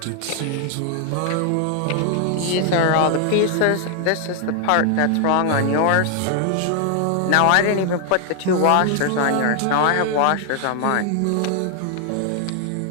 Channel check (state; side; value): different; both; correlation 0.00